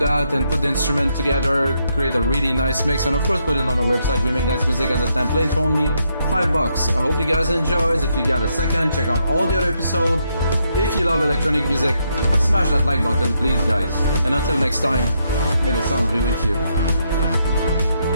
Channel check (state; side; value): inverted; both; correlation -0.77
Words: and put the instrument together, create a really nice mix, and of course put it on our website. We make dance music as a template for only $5. I hope you guys enjoy. If you got a second, check out all the other episodes. If you love electronic music, smash that like button please guys. And until next time, may the sound be with you.